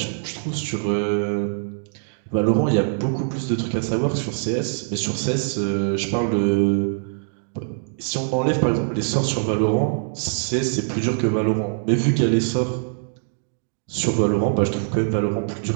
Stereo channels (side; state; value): left; silent; digital silence